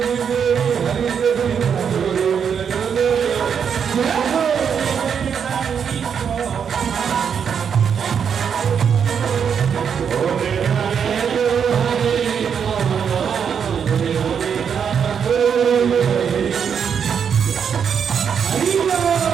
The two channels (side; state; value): left; quieter; 7.3 dB